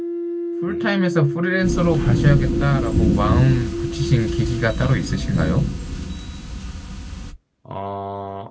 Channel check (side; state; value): both; identical; correlation 1.00